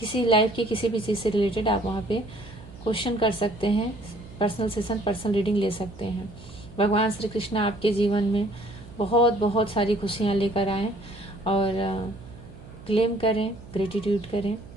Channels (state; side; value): noise; right; hum, 18 dB below the sound